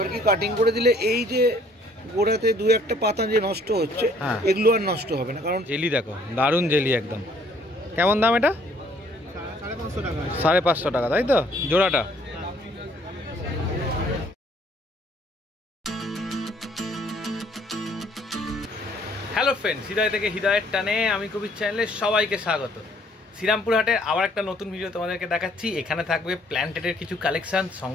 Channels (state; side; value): normal; both; correlation 0.61